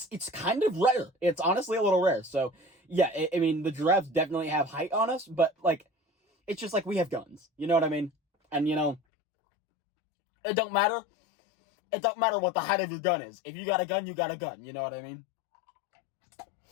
kind of rare. It's honestly a little rare. So yeah, I mean, the giraffes definitely have height on us, but like, it's just like we have guns. You know what I mean? And you know, it don't matter. It don't matter what the height of your gun is. If you got a gun, you got a gun. You know what I mean?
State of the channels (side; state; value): right; drops out; at 9.0 s